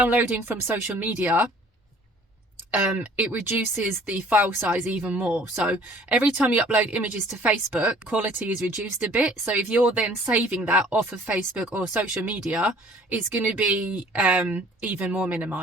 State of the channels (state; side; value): normal; both; correlation 0.54